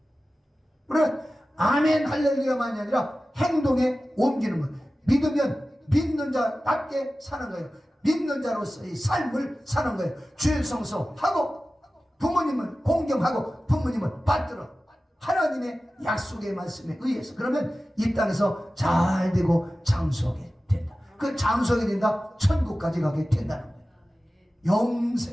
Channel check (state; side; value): normal; both; correlation 0.95